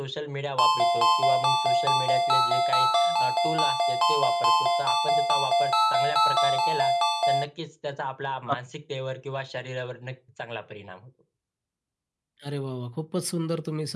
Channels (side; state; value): both; identical; correlation 1.00